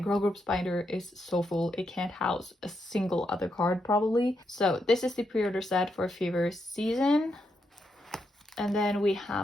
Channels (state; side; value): normal; both; correlation 0.82